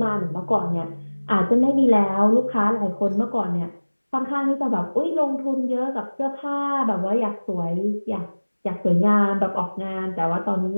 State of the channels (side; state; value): both; inverted; correlation -1.00